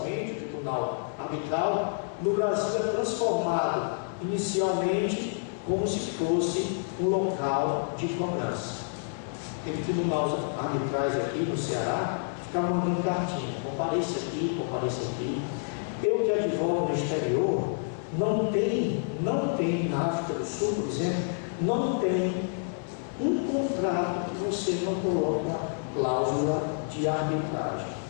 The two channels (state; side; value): silent; right; 59 dB below the other